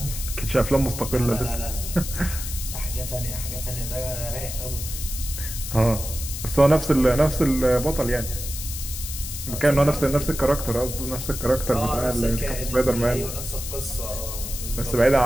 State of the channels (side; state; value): left; noise; hiss, 7 dB below the sound